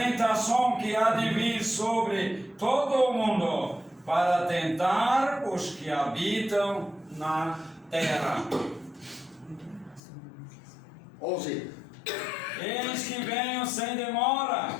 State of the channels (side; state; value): right; drops out; at 10.0 s